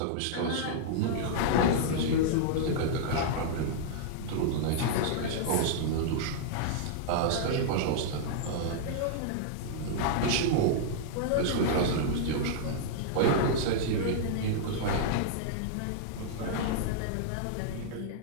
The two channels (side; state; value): both; different; correlation -0.02